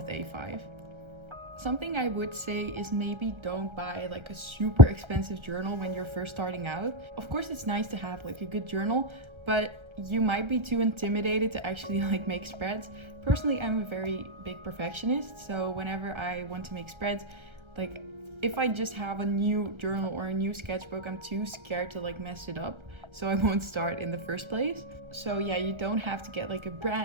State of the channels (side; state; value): left; late; 1.3 ms